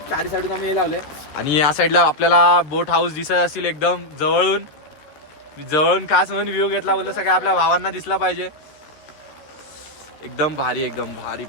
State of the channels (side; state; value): right; late; 13 ms